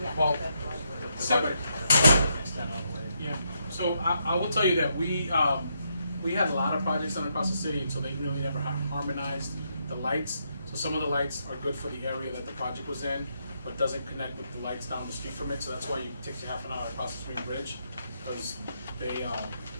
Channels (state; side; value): inverted; both; correlation -0.78